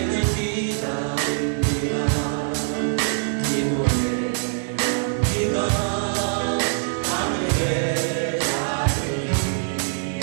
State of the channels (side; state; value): left; silent; 63 dB below the other